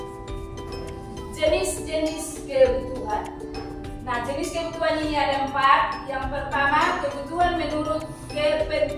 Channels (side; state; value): both; identical; correlation 1.00